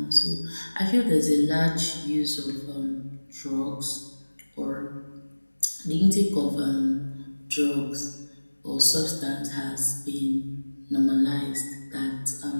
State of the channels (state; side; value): inverted; both; correlation -1.00